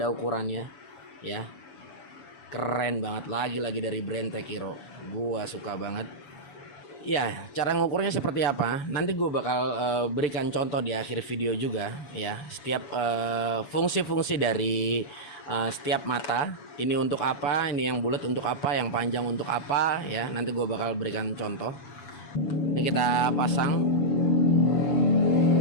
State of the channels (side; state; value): right; late; 7.0 ms